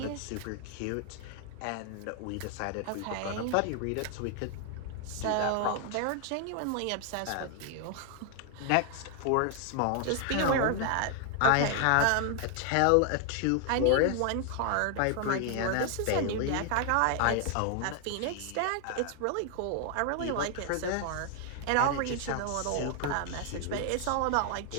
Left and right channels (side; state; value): both; different; correlation 0.00